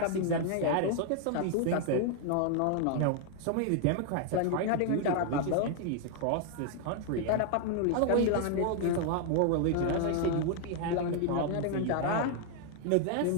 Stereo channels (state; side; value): different; both; correlation 0.00